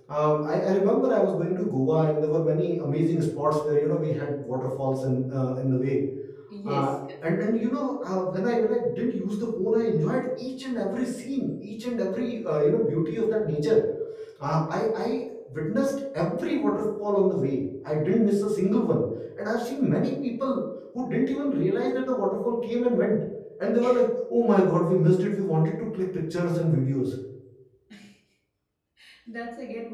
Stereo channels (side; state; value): both; identical; correlation 1.00